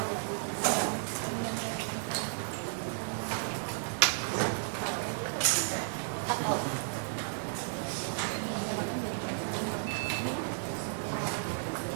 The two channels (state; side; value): silent; left; digital silence